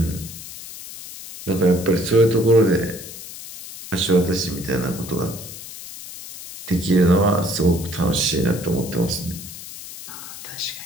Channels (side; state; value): left; noise; hiss, 13 dB below the sound